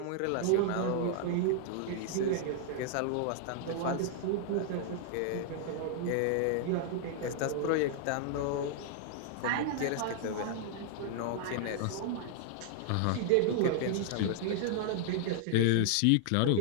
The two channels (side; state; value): both; different; correlation -0.01